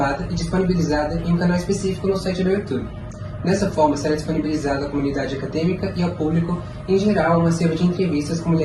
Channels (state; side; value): identical; both; correlation 1.00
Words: e disponibilizada em um canal específico no site do YouTube. Dessa forma, será disponibilizada à comunidade acadêmica e ao público, em geral, uma série de entrevistas com